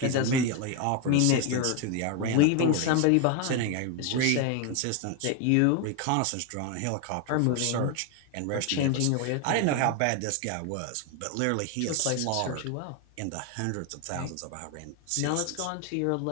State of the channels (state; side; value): different; both; correlation 0.01